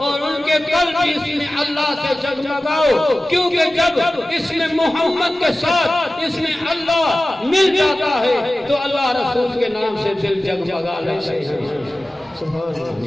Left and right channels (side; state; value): both; normal; correlation 0.96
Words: ان کے قلب بھی اس میں اللہ سے جگمگاؤ کیونکہ جب اس میں محمد کے ساتھ اس میں اللہ مل جاتا ہے تو اللہ رسول کے نام سے دل جگمگا لیتے ہیں